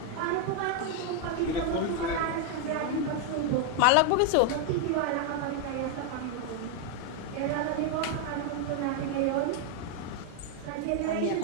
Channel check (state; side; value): different; both; correlation 0.00